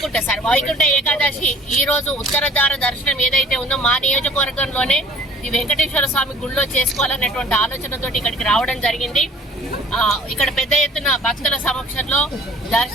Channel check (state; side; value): normal; both; correlation 0.51